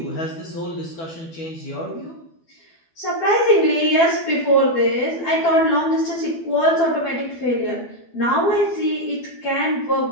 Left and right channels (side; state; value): right; late; 12 ms